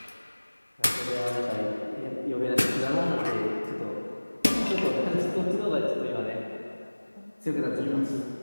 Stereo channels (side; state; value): both; inverted; correlation -1.00